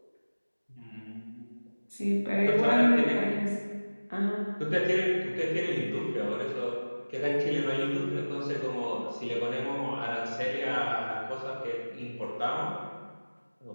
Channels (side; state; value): both; inverted; correlation -1.00